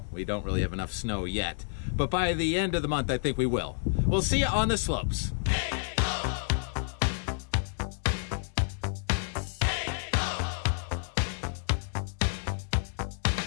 we don't really have enough snow yet. But by the end of the month, I think we will. We'll see you on the slopes.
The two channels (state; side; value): silent; right; digital silence